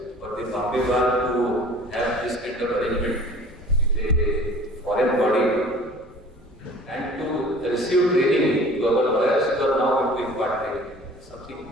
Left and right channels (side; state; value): both; normal; correlation 0.47